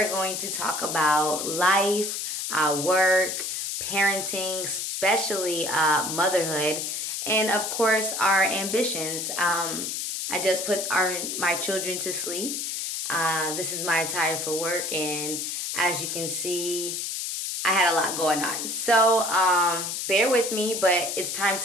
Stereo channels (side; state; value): left; noise; hiss, 3 dB below the sound